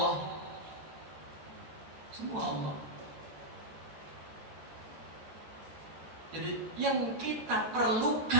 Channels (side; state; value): left; late; 13 ms